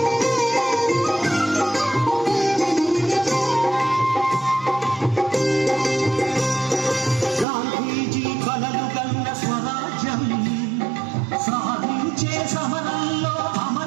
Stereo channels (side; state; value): left; drops out; at 7.5 s